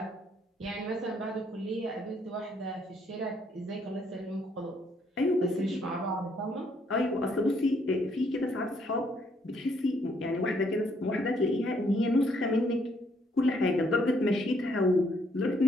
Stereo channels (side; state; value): both; normal; correlation 0.69